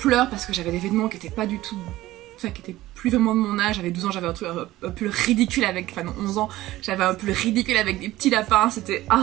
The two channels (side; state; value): left; quieter; 16.4 dB